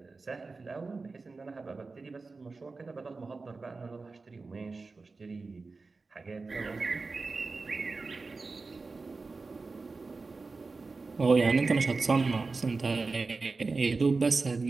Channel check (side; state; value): left; quieter; 4.0 dB